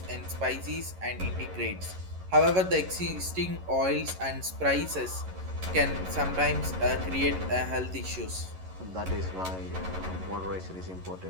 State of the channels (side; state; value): left; late; 11 ms